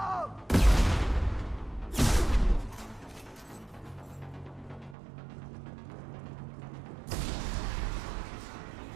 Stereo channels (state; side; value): drops out; left; at 5.0 s